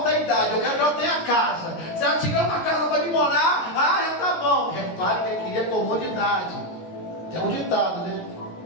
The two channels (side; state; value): right; late; 16 ms